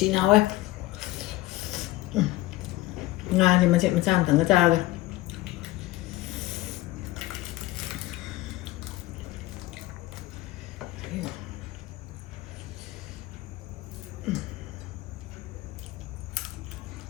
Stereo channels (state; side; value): quieter; right; 17.8 dB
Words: ꯍꯥꯎꯋꯦ ꯉꯥꯁꯦ ꯃꯆꯦꯠ ꯃꯆꯥ ꯑꯃꯇꯪꯒ ꯆꯥꯔꯒ